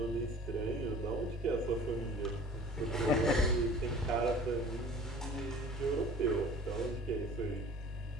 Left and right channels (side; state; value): both; normal; correlation 0.46